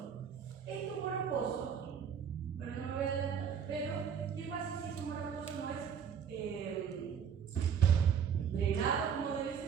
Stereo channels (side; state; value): left; quieter; 7.5 dB